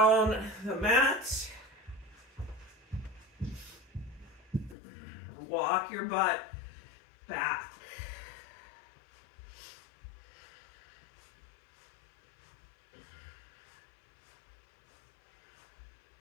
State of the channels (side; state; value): right; drops out; at 4.8 s